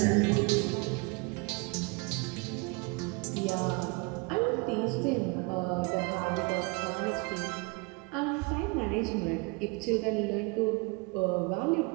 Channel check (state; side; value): quieter; left; 29.1 dB